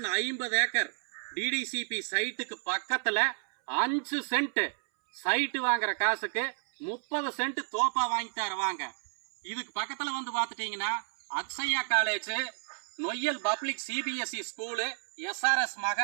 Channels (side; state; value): left; silent; 57 dB below the other